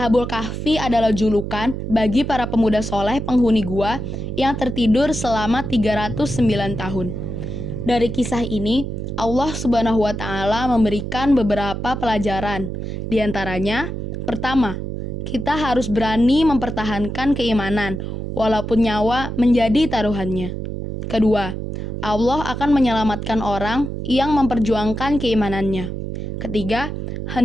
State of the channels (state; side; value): noise; right; hum, 5 dB below the sound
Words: Kahfi adalah julukan bagi para pemuda soleh penghuni gua yang tertidur selama 309 tahun. Dari kisah ini, Allah Subhanahu wa taala memberikan beberapa pelajaran. Di antaranya, pertama, kita harus berani mempertahankan keimanan walaupun nyawa menjadi taruhannya. Kedua, Allah akan menyelamatkan orang yang memperjuangkan keimanannya. Ketiga,